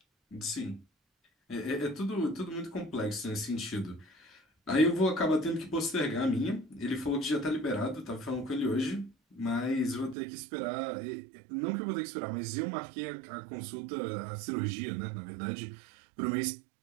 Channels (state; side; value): drops out; left; at 10.2 s